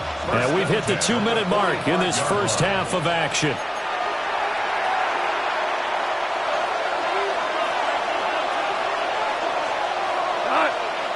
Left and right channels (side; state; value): both; identical; correlation 1.00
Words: And we've hit the 2-minute mark in this first half of action.